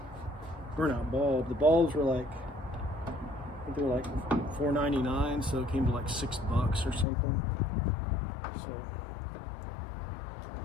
burnout bulb. The bulbs were like, I think they were like $4.99, so it came to like $6 or something. So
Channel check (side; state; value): right; drops out; at 7.1 s